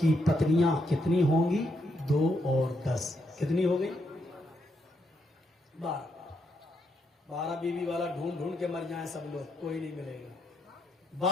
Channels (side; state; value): both; normal; correlation 0.79